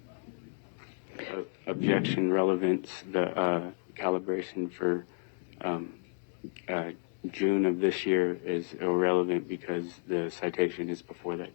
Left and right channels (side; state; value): right; silent; digital silence